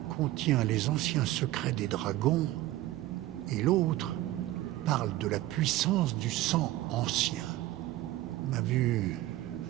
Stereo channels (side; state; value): left; quieter; 15.8 dB